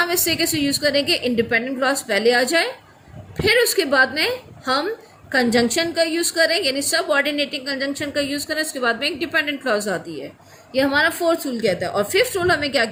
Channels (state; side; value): identical; both; correlation 1.00